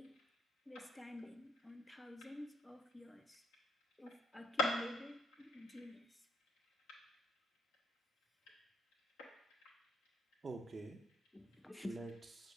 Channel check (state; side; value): normal; both; correlation 0.71